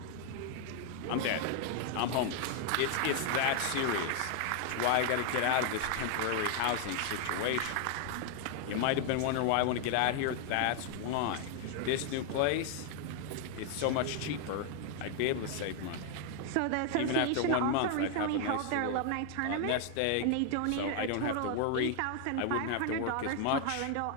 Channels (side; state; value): both; different; correlation 0.00